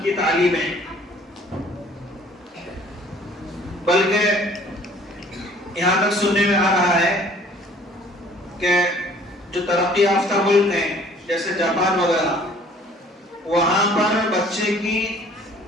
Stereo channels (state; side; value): normal; both; correlation 0.55